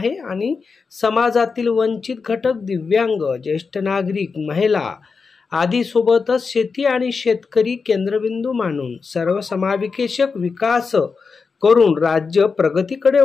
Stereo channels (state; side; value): quieter; right; 5.0 dB